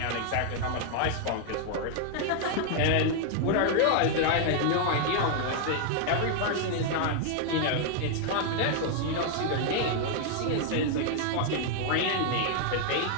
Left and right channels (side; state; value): both; different; correlation 0.00